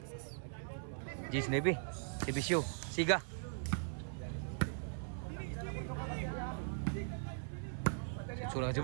Gis Navy. Servisyo Siga. Sulang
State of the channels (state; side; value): silent; left; 51 dB below the other